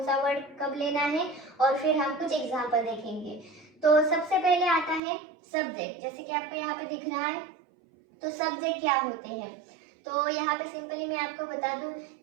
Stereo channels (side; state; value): left; drops out; at 5.0 s